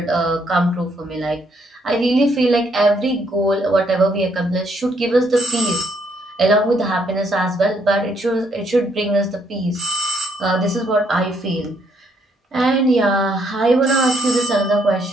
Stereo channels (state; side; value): normal; both; correlation 0.71